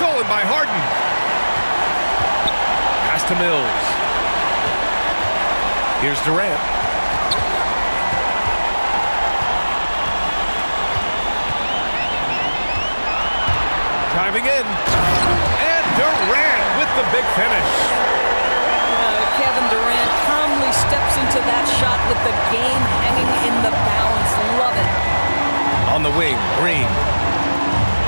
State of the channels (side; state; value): both; inverted; correlation -1.00